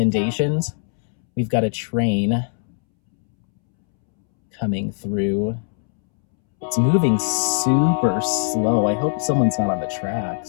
We've got a train coming through. It's moving super slow. I hope someone's not on the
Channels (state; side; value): silent; right; 65 dB below the other